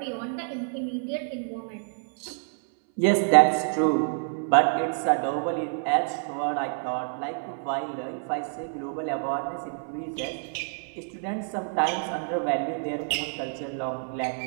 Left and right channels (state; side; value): silent; left; 60 dB below the other